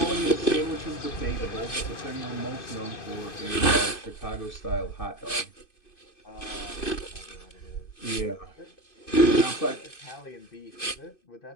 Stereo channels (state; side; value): late; right; 2.5 ms